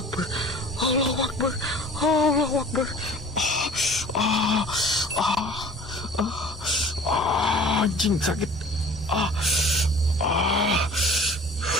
Akbar, Allahu Akbar, Allahu Akbar. Anjing sakit.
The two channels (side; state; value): both; normal; correlation 0.46